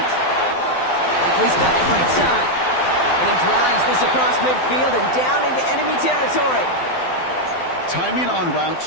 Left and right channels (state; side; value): late; right; 12 ms